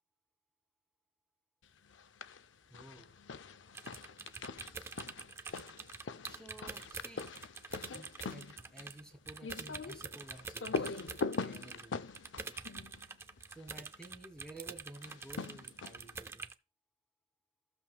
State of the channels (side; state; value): both; normal; correlation 0.05